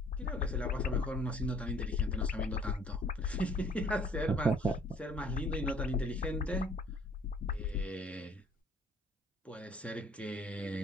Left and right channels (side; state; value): both; normal; correlation 0.58